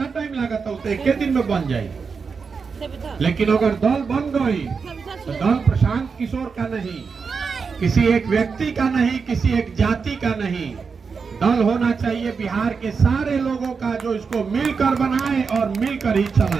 टाइम लागत है? तो एक दिन में बन जाए। लेकिन अगर दल बन गई तो दल प्रशांत किशोर का नहीं, किसी एक व्यक्ति का नहीं, किसी एक जाति का नहीं। दल होना चाहिए बिहार के सारे लोगों का जो इसको मिलकर बनाए और मिलकर ही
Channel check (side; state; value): left; quieter; 5.3 dB